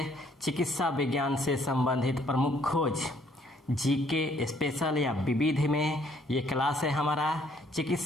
चिकित्सा विज्ञान से संबंधित प्रमुख खोज जीके स्पेशल या विविध में ये क्लास है हमारा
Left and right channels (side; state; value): both; normal; correlation 0.65